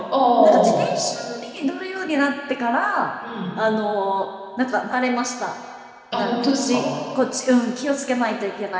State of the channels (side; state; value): both; identical; correlation 1.00